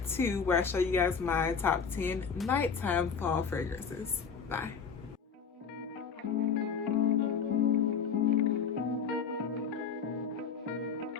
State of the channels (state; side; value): quieter; right; 6.2 dB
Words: 2 where I show you guys my top 10 nighttime fall fragrances. Bye.